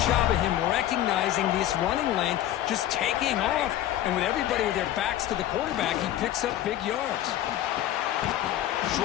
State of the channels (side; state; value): right; quieter; 12.7 dB